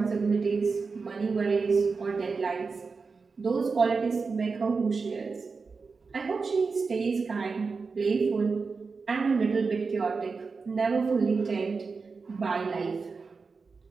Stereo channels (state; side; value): quieter; left; 4.6 dB